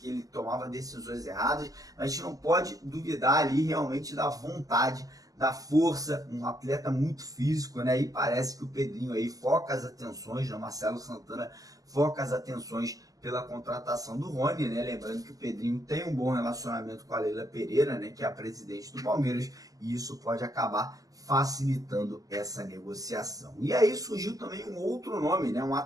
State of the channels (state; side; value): late; left; 0.17 ms